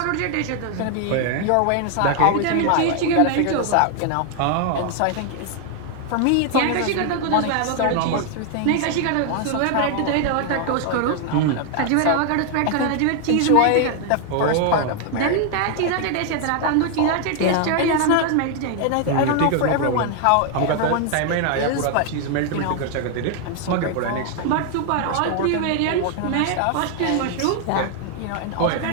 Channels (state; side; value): different; both; correlation 0.00